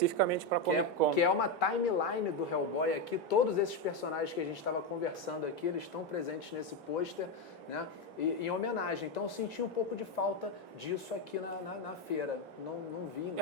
para Comic Con. Que é uma timeline do Hellboy aqui, todos esses personagens que a gente estava conversando aqui, eles estão presentes nesse pôster, né? Em homenagem. Então eu senti um pouco de falta disso aqui na feira. não vi Foi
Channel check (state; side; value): normal; both; correlation 0.08